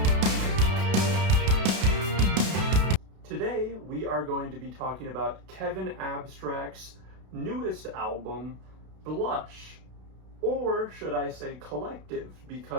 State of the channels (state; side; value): late; left; 32 ms